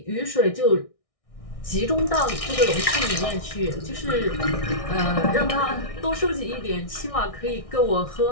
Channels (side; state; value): right; late; 1.6 ms